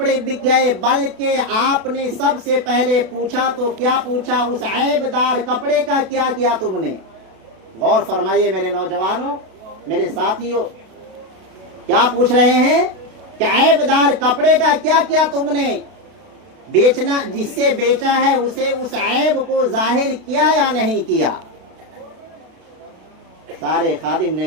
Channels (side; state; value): left; late; 32 ms